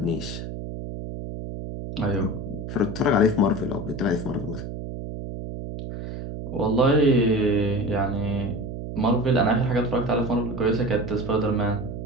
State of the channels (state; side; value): noise; right; hum, 8 dB below the sound